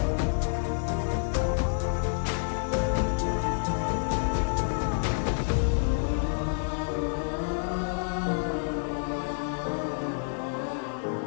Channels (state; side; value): silent; right; digital silence